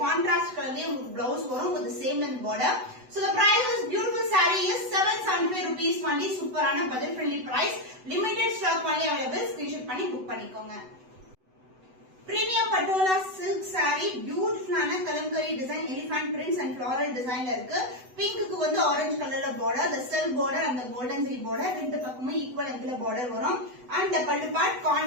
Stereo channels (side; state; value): left; late; 8.0 ms